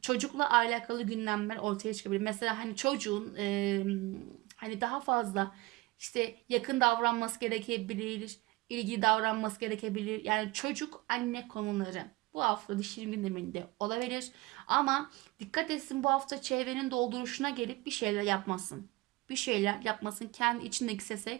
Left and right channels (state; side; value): quieter; left; 22.2 dB